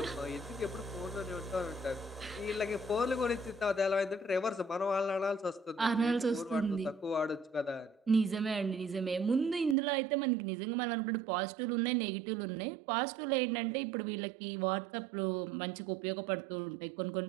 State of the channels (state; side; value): drops out; left; at 9.8 s